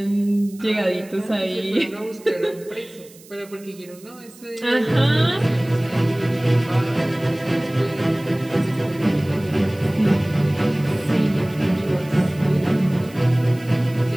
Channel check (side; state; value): right; noise; hiss, 23 dB below the sound